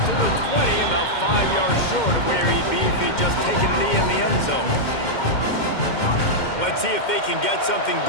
the 20, about 5 yards short of where he'd be if he'd just taken a knee in the end zone. Let's see if they can get something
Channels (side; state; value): right; late; 2.1 ms